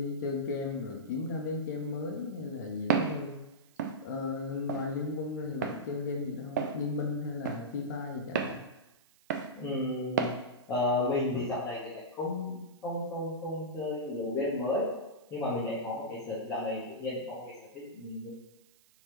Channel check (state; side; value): noise; right; hiss, 29 dB below the sound